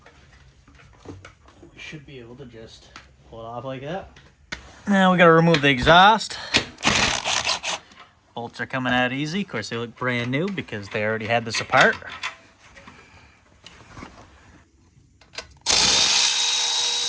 We should be able to just pull it off like that. Now we got to remove the exhaust. Bolts are coming out easy. Of course, they look brand new because they already had this apart.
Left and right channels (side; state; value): both; identical; correlation 1.00